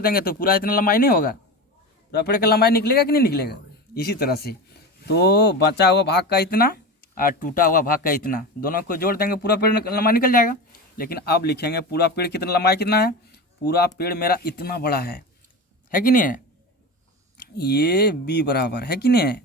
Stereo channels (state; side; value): normal; both; correlation 0.26